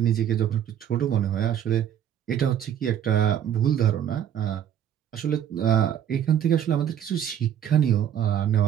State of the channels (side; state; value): left; quieter; 9.9 dB